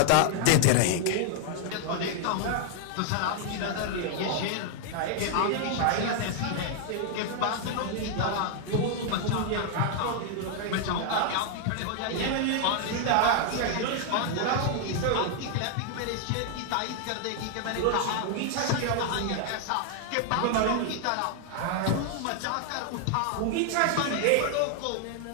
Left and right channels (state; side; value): different; both; correlation 0.00